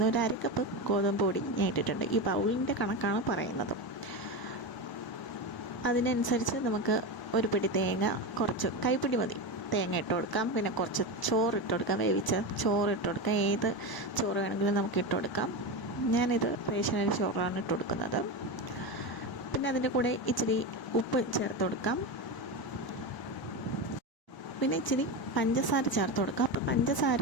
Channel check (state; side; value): late; right; 1.0 ms